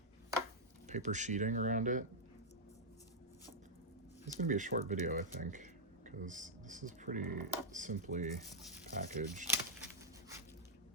paper sheeting around it. It's gonna be a short video, I think, because this is pretty simply packaged.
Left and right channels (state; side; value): normal; both; correlation -0.06